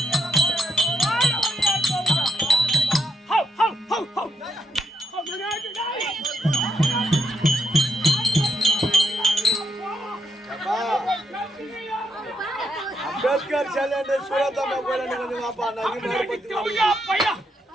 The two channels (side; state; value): both; normal; correlation 0.80